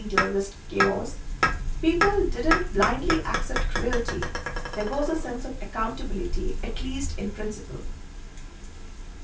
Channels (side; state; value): both; identical; correlation 1.00